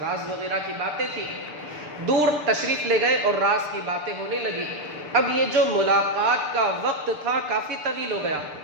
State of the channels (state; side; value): late; left; 6.7 ms